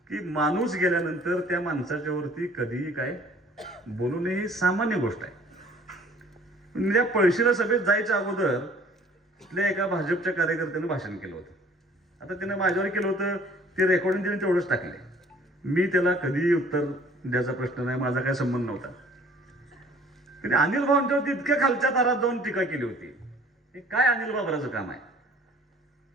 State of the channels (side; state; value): both; normal; correlation 0.54